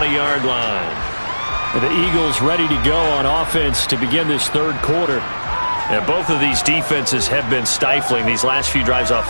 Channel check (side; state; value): both; inverted; correlation -1.00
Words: line. The Eagles ready to go on offense to begin this third quarter. And both of these defenses have been stifling these last few drives